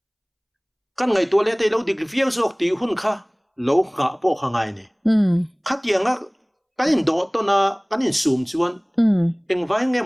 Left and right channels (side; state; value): both; identical; correlation 1.00